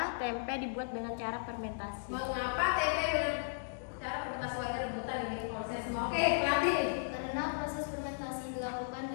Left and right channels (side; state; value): right; silent; digital silence